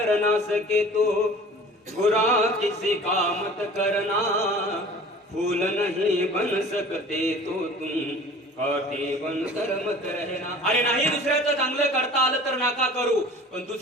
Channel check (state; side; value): normal; both; correlation 0.44